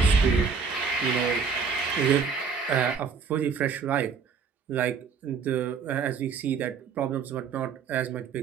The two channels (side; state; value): left; quieter; 5.8 dB